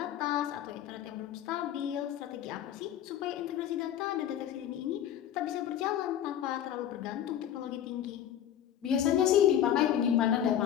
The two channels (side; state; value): right; quieter; 10.6 dB